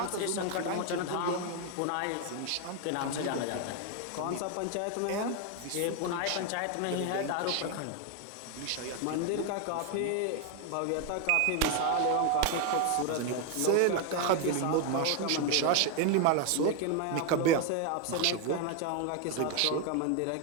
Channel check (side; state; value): both; different; correlation 0.01